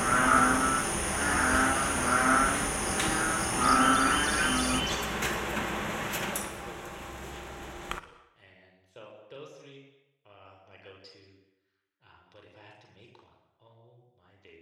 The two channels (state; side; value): identical; both; correlation 1.00